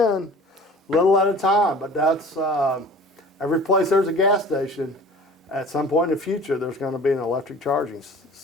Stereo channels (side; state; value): both; normal; correlation 0.44